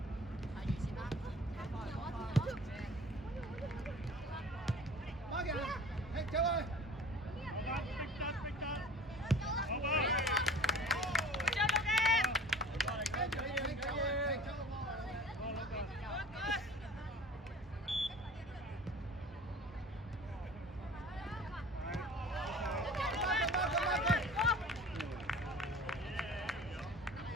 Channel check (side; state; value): both; normal; correlation 0.43